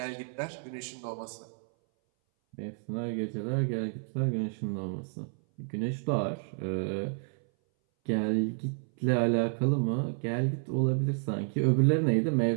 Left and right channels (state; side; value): silent; left; 57 dB below the other